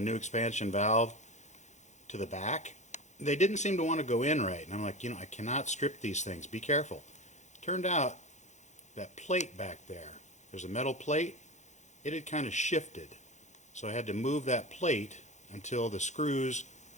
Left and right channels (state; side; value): late; right; 0.34 ms